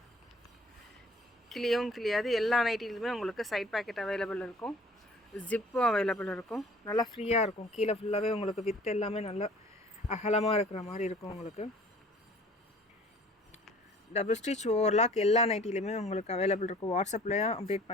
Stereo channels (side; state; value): both; normal; correlation 0.51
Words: கிளியாது. எல்லா நைட்டிலுமே உங்களுக்கு சைட் பேக்கெட் அவைலபிள் இருக்கும், ஜிப்பும் அவைலபிள் இருக்கும். நல்லா ஃப்ரீயாக இருக்கும். கீழே ஃபுல்லாகவே உங்களுக்கு வித் எல்லாமே நல்லா அகலமாக இருக்கிற மாதிரி இருக்கும். உங்களுக்கு டபுள் ஸ்டிச் ஓவர்லாக் எல்லா நைட்டிலுமே உங்களுக்கு அவைலபிள் இருக்கும். வாட்ஸ்அப்லேயும் அப்டேட்